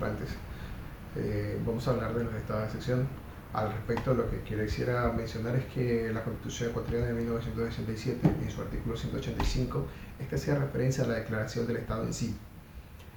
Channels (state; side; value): identical; both; correlation 1.00